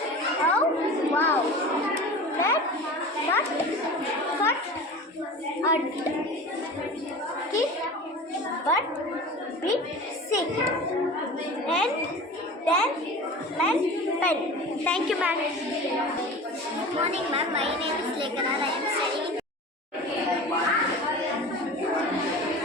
how, wow. Nut, cut, kick, butt, bit, sick. Hen, then, pen. Thank you, ma'am. Good morning, ma'am. My name is Lekana. I am studying in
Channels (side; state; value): both; normal; correlation 0.36